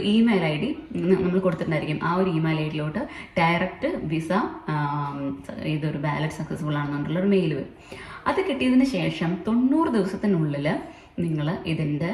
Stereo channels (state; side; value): identical; both; correlation 1.00